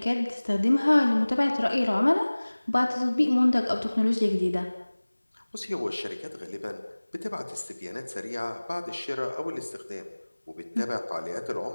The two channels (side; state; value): both; inverted; correlation -1.00